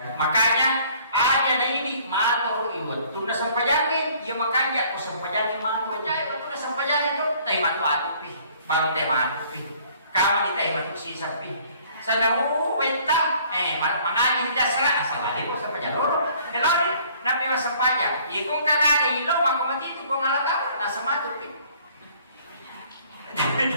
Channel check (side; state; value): both; inverted; correlation -0.57